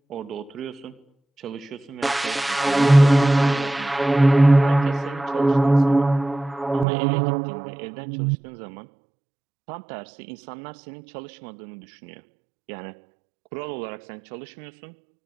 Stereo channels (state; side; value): drops out; left; at 6.9 s